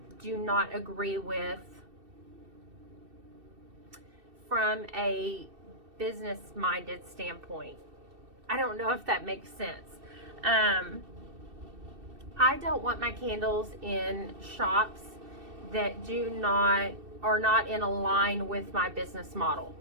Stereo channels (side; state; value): left; late; 2.7 ms